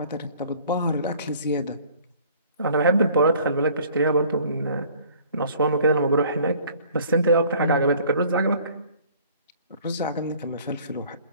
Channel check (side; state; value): both; inverted; correlation -0.53